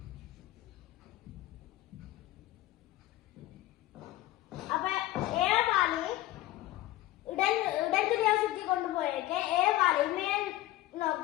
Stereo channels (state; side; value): quieter; right; 16.0 dB